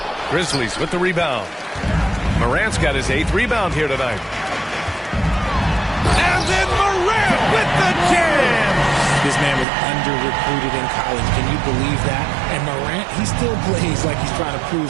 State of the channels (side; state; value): left; drops out; at 9.7 s